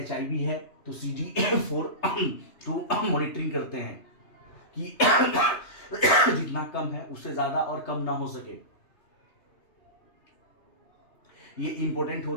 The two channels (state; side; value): late; right; 3.3 ms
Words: HIV है तो CD4 तो मॉनिटरिंग करते हैं कि जितना कम है उससे ज्यादा और कम ना हो सके। ये इंपॉर्टेंट